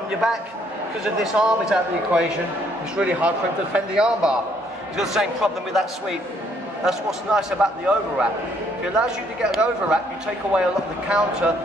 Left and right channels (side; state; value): both; normal; correlation 0.67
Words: your back? Because of this arm is out of the equation, it's really hard for him to defend the arm bar. He's got the same problem with that sweep. That's what's nice about the overwrap. If it allows you to get an overwrap, you take away a lot of the counter